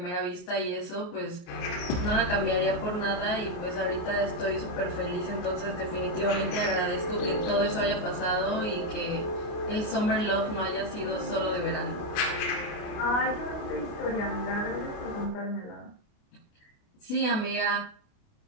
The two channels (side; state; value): right; late; 28 ms